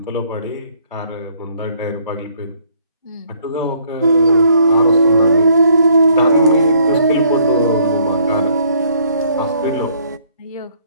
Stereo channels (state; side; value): inverted; both; correlation -0.65